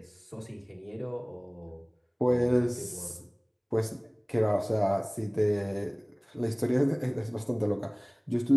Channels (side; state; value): both; identical; correlation 1.00